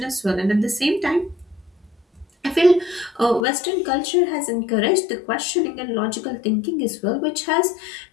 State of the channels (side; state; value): right; drops out; at 3.5 s